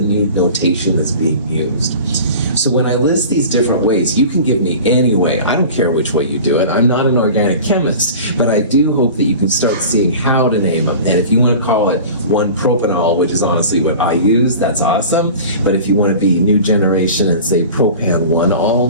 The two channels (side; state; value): both; inverted; correlation -0.38